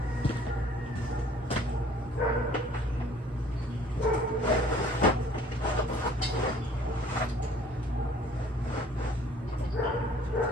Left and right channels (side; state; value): both; normal; correlation 0.55